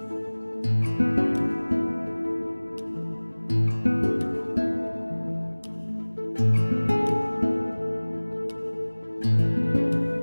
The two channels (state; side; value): inverted; both; correlation -1.00